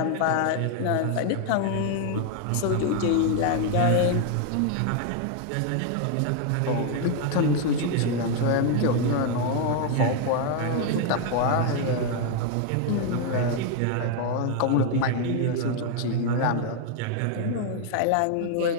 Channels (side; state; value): both; different; correlation 0.00